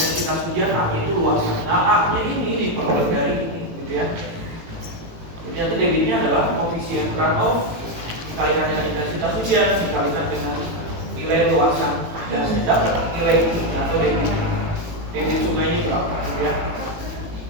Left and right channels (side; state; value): left; late; 18 ms